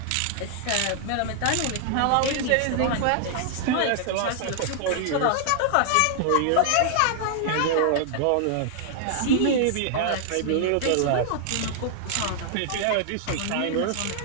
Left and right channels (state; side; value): different; both; correlation -0.01